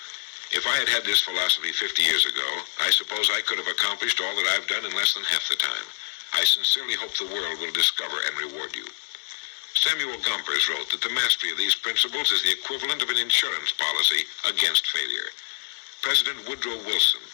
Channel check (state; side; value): silent; right; digital silence